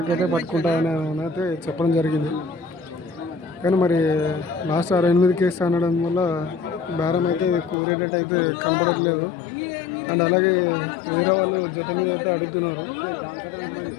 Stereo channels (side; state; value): right; drops out; at 7.8 s